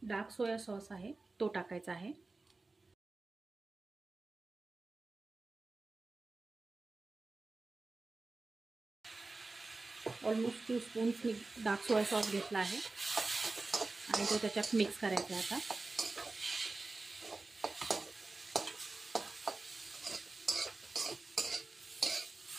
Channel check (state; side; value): quieter; left; 3.4 dB